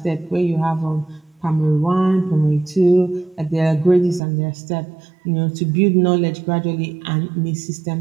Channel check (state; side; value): drops out; left; at 4.2 s